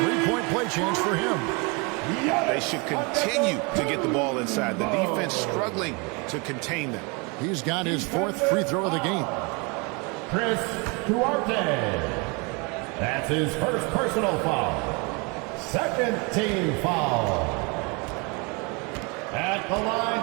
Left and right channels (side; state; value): left; quieter; 30.3 dB